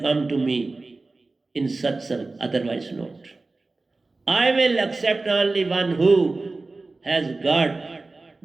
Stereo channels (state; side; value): quieter; left; 3.4 dB